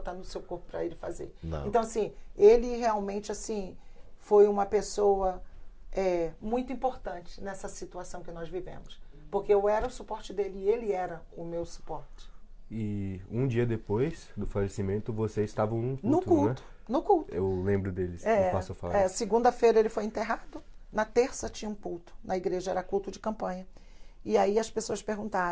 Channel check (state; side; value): identical; both; correlation 1.00